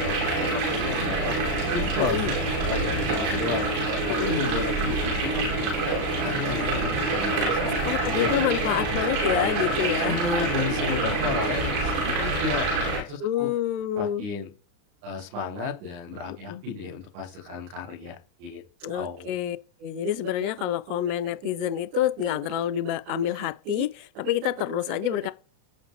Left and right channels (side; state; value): left; late; 36 ms